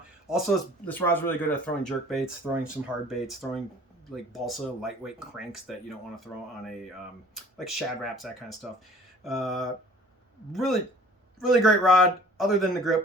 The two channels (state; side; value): normal; both; correlation 0.50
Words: Also, this rod's really good at throwing jerk baits, throwing some hard baits, throwing like balsa lightweight cranks that you don't want to throw on a like shad wraps, that kind of stuff. Really great rod. Other than the